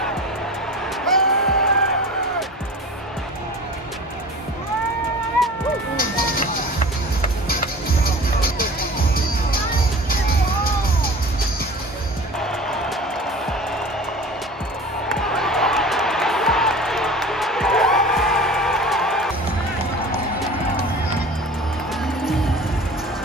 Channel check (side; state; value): both; normal; correlation 0.39